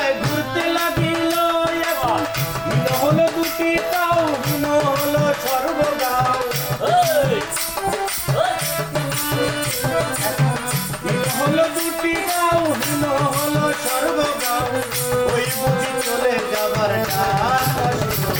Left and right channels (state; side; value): identical; both; correlation 1.00